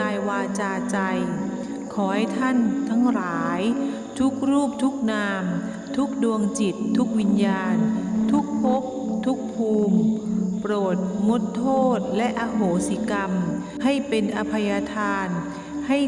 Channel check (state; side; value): identical; both; correlation 1.00